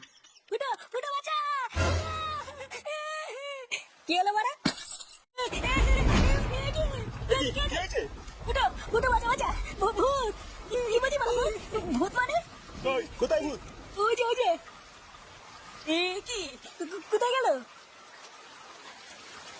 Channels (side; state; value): both; identical; correlation 1.00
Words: ভূত মানে? ওই কোথায় ভূত? ওই যে এ কি কোথায় গেল?